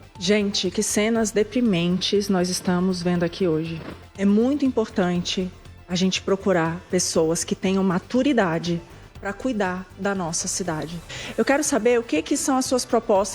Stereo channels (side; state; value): both; identical; correlation 1.00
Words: Gente, que cenas deprimentes nós estamos vendo aqui hoje. É muito importante a gente procurar pessoas que tenham maturidade para cuidar da nossa cidade. Eu quero saber o que são as suas